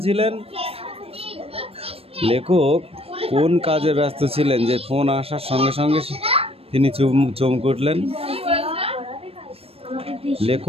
লেখক কোন কাজে ব্যস্ত ছিলেন যে ফোন আসার সঙ্গে সঙ্গে তিনি চমকে উঠলেন?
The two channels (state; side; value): late; left; 0.28 ms